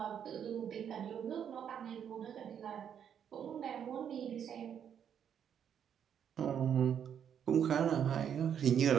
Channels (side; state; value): left; quieter; 8.6 dB